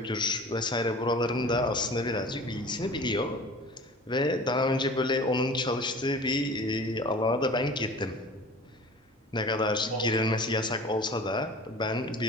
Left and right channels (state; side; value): normal; both; correlation 0.41